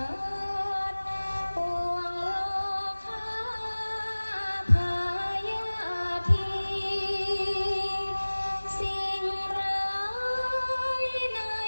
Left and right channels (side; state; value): both; inverted; correlation -1.00